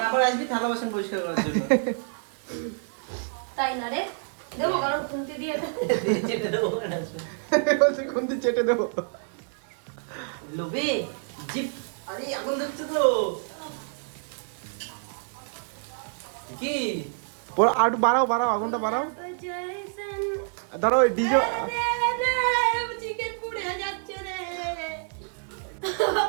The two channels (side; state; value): left; silent; digital silence